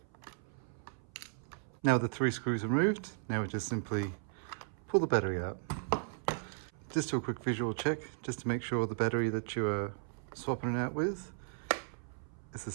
Now with the 3 screws removed, now we just simply pull the battery out. Just do a quick visual check, just to make sure the battery that you are swapping it out with is the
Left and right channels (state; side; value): silent; left; 54 dB below the other